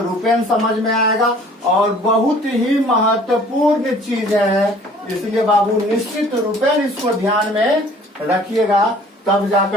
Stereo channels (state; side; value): normal; both; correlation 0.53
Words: समझ में आएगा। और बहुत ही महत्वपूर्ण चीज है इसलिए बाबू निश्चित रूपेण इसको ध्यान में रखिएगा, तब